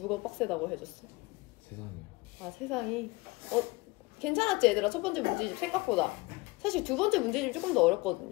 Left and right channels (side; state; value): right; quieter; 23.5 dB